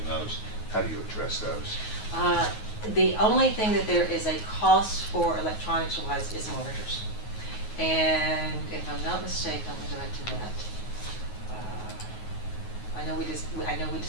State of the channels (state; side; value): late; right; 9.4 ms